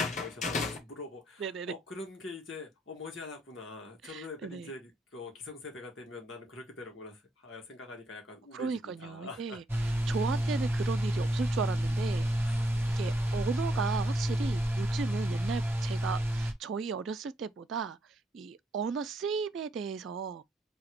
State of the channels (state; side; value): normal; both; correlation 0.76